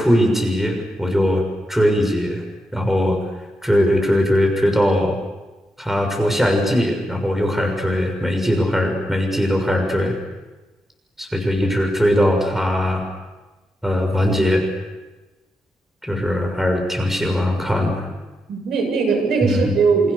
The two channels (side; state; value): both; normal; correlation 0.85